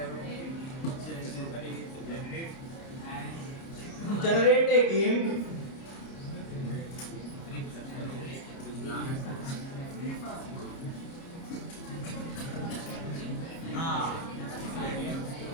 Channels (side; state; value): right; late; 30 ms